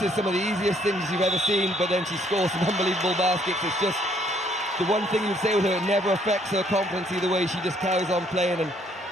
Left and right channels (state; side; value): normal; both; correlation 0.66